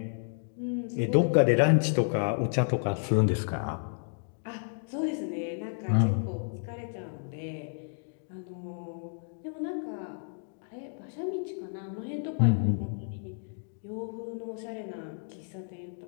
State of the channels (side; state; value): right; silent; digital silence